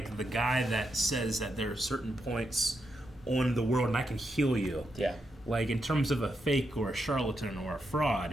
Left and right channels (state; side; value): normal; both; correlation 0.83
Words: the guy that says that there are certain points on the world and I can heal you. Yeah. Like, in terms of a fake or a charlatan or a